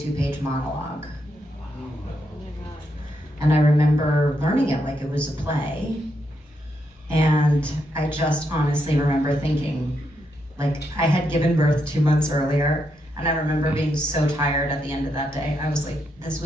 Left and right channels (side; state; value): both; normal; correlation 0.80